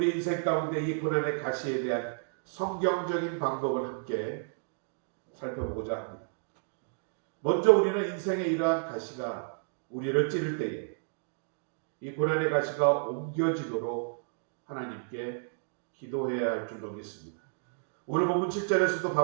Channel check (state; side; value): silent; left; digital silence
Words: 인생 가운데 이 고난의 가시에 대한 성경적인 방법을 함께 살펴보고자 합니다. 먼저 우리는 인생의 이러한 가시가 우리를 찌를 때에 이 고난의 가시가 옮겨지도록 하나님께 기도해야 할 줄로 믿습니다. 오늘 본문 7절에서도